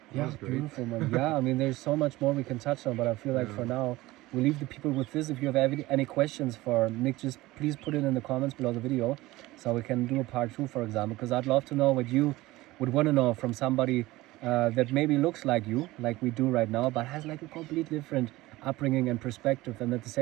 Yeah, beautiful, man. Yeah, I mean, there's so much more we can touch on, but I feel like for now, we leave the people with this. If you have any questions for Nick, just please put it in the comments below the video, so we can do a part 2, for example, because I'd love to know what you would want to know from somebody that maybe looks like you, like we do right now, but has like a completely different upbringing and perspective, and at the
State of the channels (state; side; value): quieter; left; 18.8 dB